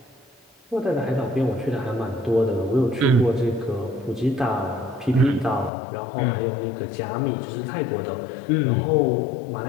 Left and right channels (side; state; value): right; drops out; at 5.7 s